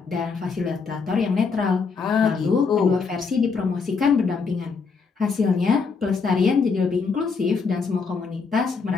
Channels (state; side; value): quieter; right; 5.1 dB